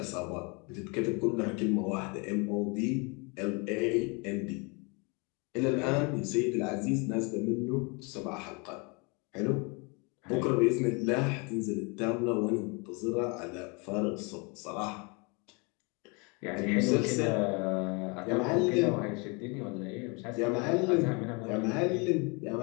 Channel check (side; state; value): right; quieter; 31.0 dB